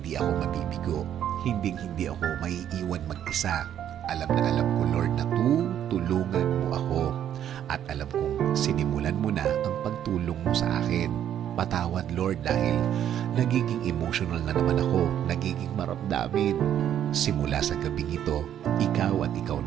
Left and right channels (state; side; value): quieter; left; 10.3 dB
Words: ako mabibigo. Hinding-hindi ako maiiwan mag-isa. Alam ko, Lord, na tutulungan mo ako. At alam kong sinimulan mo na ang pagtulong mo sa akin. Patawad, Lord, dahil nagiging emotional na naman ako, nagiging maramdamin. Simula sa gabing ito, ikaw at ikaw